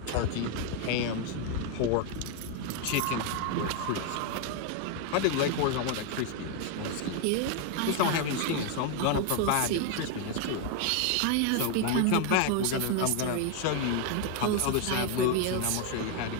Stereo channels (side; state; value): both; different; correlation 0.01